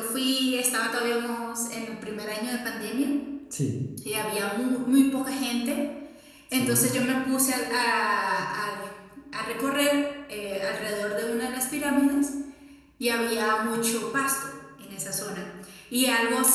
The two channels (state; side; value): identical; both; correlation 1.00